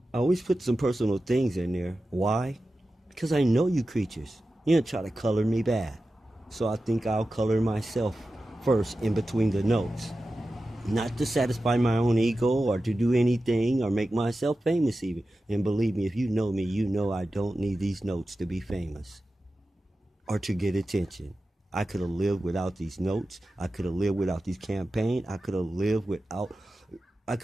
I always put some personal things in there. Why? Because I know you creatures. You don't try to color me bad. So I think I'll color myself first in between the notes. Not to satisfy my own ego or to do anything or make myself famous even. And believe me, if you know me, you know I don't need these notes to be famous or to get attention. I could have lived without these notes. I could have lived without these campaigns. I could have lived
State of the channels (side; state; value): both; normal; correlation 0.93